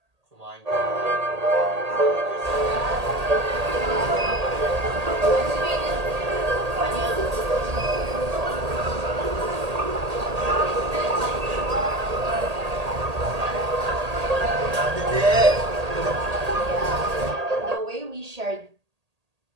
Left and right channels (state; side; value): late; left; 1.8 ms